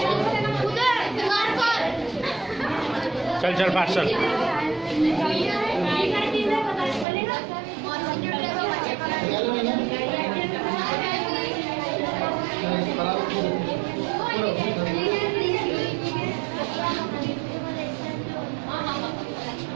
चल चल फास्ट चल।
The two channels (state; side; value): drops out; left; at 7.1 s